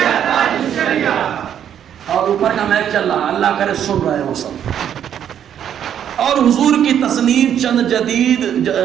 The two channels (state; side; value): quieter; left; 9.5 dB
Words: اور اوپر کا میک چل رہا، اللہ کرے سن رہے وہ سب۔ اور حضور کی